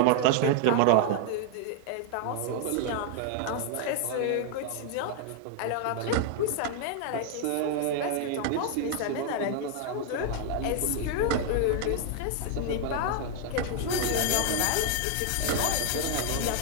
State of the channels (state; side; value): different; both; correlation 0.00